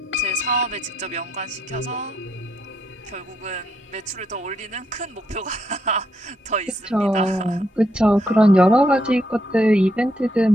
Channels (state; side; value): normal; both; correlation 0.77